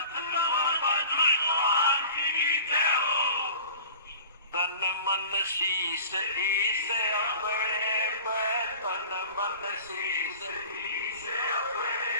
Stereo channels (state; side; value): inverted; both; correlation -0.41